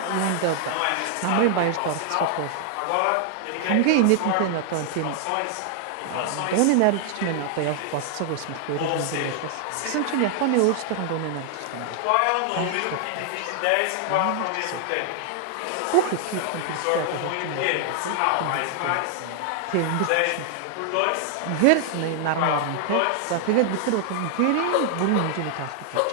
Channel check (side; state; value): both; different; correlation 0.00